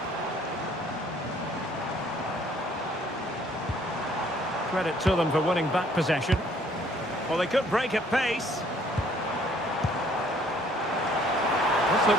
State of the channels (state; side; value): normal; both; correlation 0.61